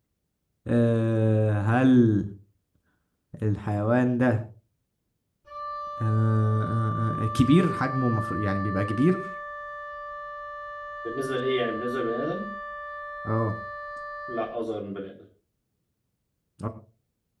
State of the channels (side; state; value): both; identical; correlation 1.00